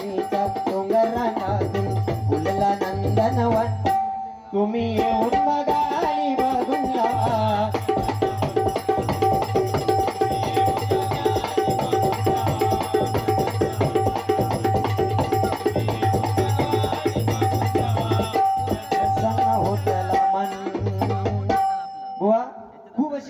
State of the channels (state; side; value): identical; both; correlation 1.00